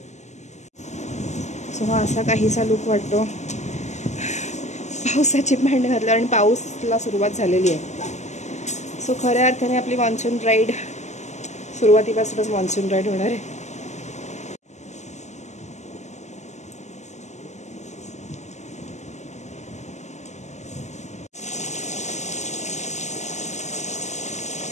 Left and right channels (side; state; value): right; late; 0.33 ms